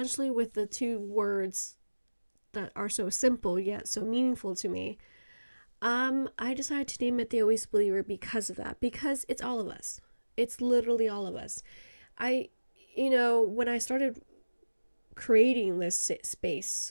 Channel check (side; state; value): both; inverted; correlation -1.00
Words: with the two words that are so simple yet so meaningful to me, I decided to name it the Always Believer because of that, because it's all of us. It's literally all of us. When I started creating this space